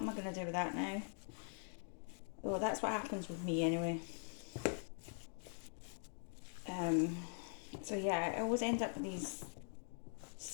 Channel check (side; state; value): right; silent; digital silence